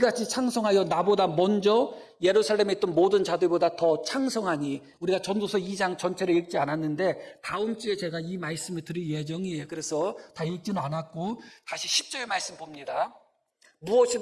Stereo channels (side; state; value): both; identical; correlation 1.00